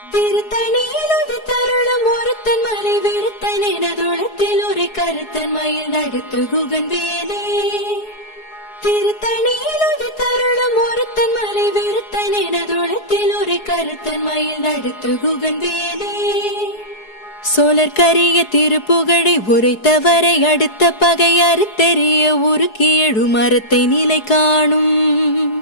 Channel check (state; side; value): late; right; 4.7 ms